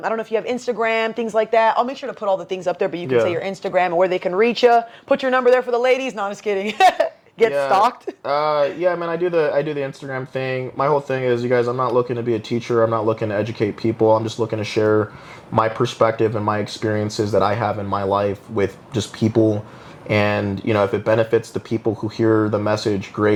don't know if you have Instagram, things like that. I'll make sure to put all the things up there, but you can Yeah. say your Instagram and where they can reach you. Put your number there for the ladies. No, I'm just kidding. Get stalked. Yeah, man, I do the Instagram thing. My whole thing is, you guys, I'm not looking to be a teacher. I'm not looking to educate people. I'm just looking to share my perspective and my experiences that I have in my life with just people. And, you know, if it benefits the people who hear the message,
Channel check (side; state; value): both; identical; correlation 1.00